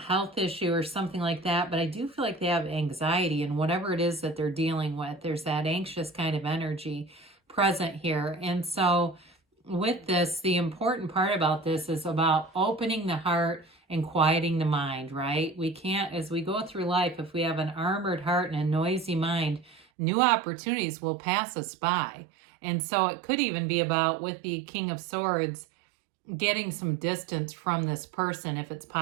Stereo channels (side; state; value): left; drops out; at 19.9 s